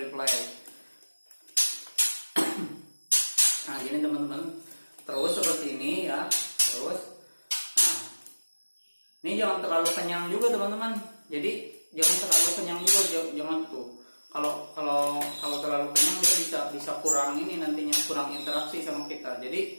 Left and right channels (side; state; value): both; inverted; correlation -1.00